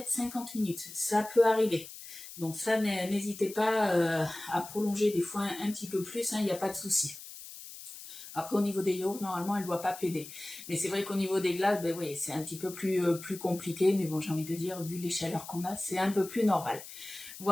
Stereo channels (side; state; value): left; noise; hiss, 14 dB below the sound